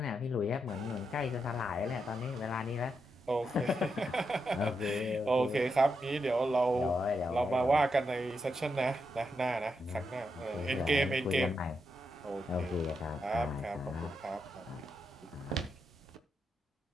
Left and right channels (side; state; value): both; normal; correlation 0.84